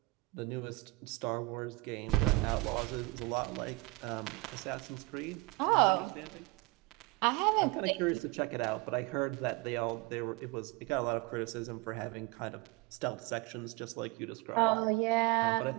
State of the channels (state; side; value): quieter; left; 23.7 dB